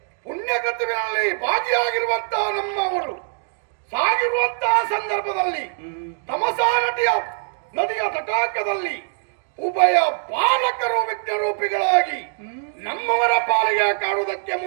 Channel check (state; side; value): silent; left; digital silence